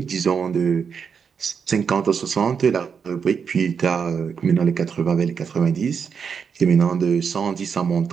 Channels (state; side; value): quieter; left; 6.4 dB